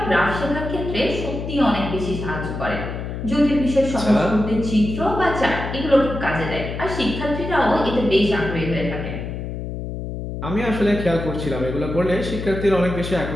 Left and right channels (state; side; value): noise; left; hum, 6 dB below the sound